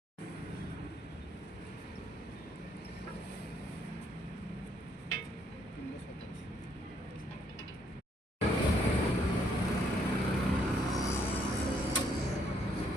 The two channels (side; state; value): both; normal; correlation 0.69